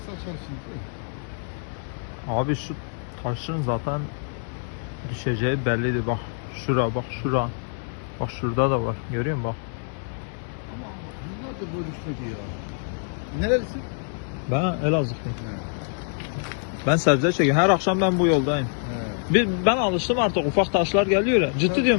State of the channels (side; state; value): right; silent; 61 dB below the other